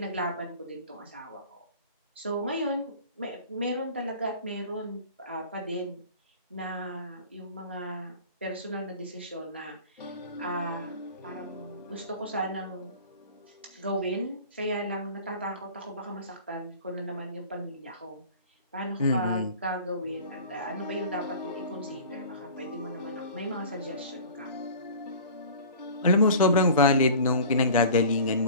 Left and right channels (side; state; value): both; inverted; correlation -0.41